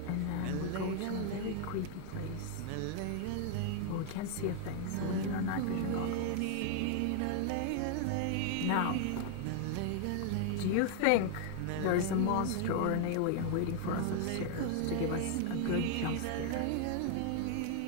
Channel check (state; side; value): different; both; correlation 0.00